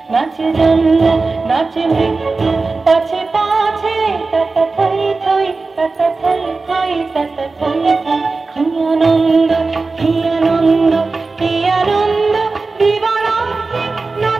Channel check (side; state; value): left; quieter; 3.9 dB